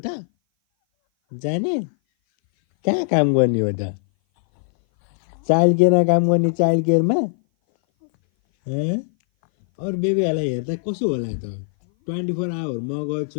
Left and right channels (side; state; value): right; silent; 58 dB below the other